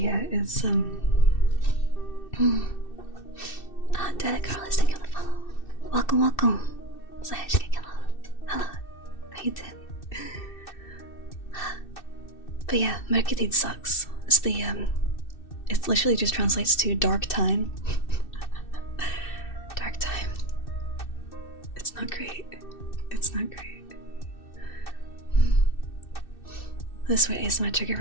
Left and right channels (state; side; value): late; right; 2.6 ms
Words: it's Derek Carlos, thank you for the follow. Welcome. Hello. How you doing? But yeah, Mørketid sucks. It's the it literally just translates to dark time. Dark time. It's not great. It's not great. This way is my trigger